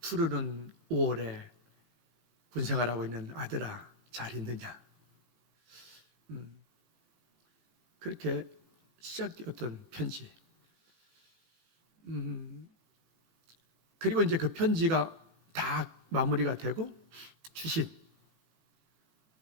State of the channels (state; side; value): late; left; 18 ms